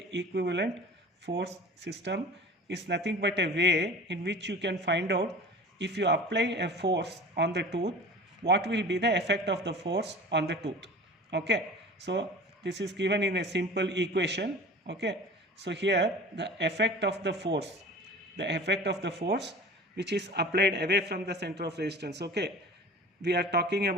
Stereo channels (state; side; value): normal; both; correlation 0.39